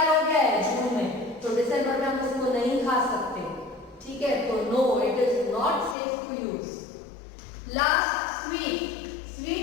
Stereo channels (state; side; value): drops out; right; at 6.0 s